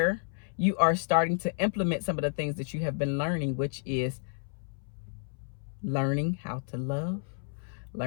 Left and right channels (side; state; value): right; silent; 57 dB below the other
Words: you are starting to implement some of the things that you have been learning, which is learning how to love,